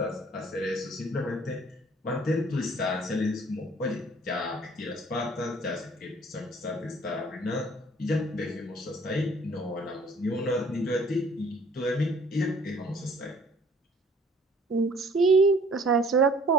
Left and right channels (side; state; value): both; normal; correlation 0.55